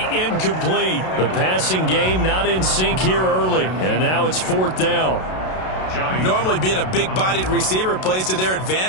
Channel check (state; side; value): late; right; 32 ms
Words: incomplete. The passing game not in sync here early. And now it's 4th down. Normally being a big-bodied receiver plays to their